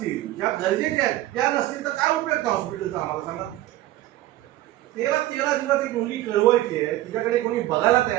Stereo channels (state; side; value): quieter; left; 15.4 dB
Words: ज्या गरजेच्या आहेत त्या नसतील तर काय उपयोग त्या हॉस्पिटलचा आम्हाला सांगा. 13 दिवस एक मुलगी कळवायची आहे, तिच्याकडे कोणी बघायला